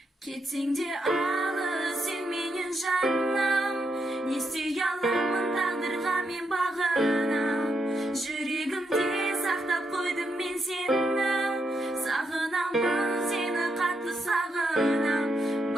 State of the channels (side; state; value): both; normal; correlation 0.80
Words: Кетсең де алыс сен менен жаным, не істей аламын тағдырға мен бағынам. Жүрегімде сақтап қойдым мен сені, сағынамын сені қатты сағынам.